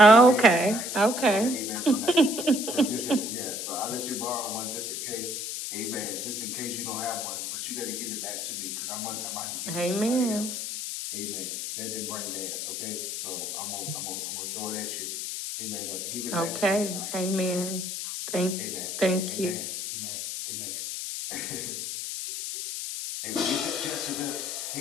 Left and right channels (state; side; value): noise; left; hiss, 4 dB below the sound